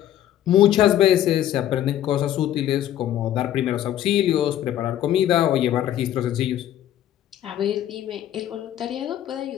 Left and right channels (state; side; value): quieter; right; 11.9 dB